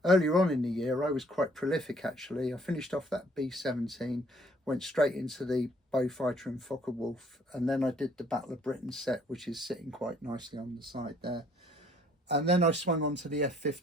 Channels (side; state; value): both; normal; correlation 0.62